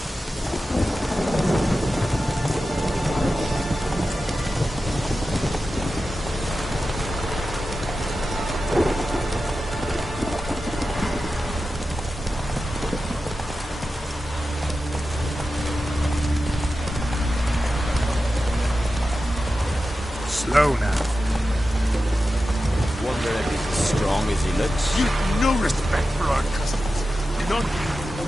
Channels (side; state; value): both; normal; correlation 0.92